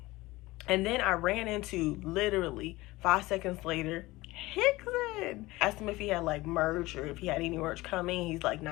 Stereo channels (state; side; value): quieter; right; 19.8 dB